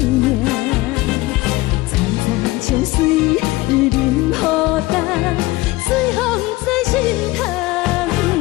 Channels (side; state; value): right; quieter; 20.1 dB